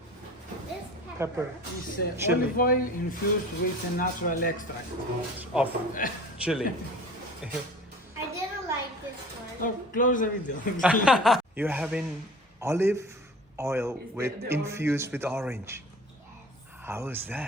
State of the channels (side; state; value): both; normal; correlation 0.41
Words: this pepper, It's Chili. olive oil infused with a natural extract. of chili. I didn't like this one. Oh, close the video. You're having olive oil Is with the infused with orange. How is